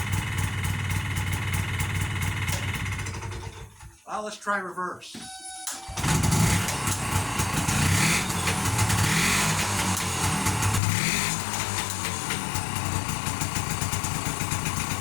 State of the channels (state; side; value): drops out; right; at 10.8 s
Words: Well, let's try reverse.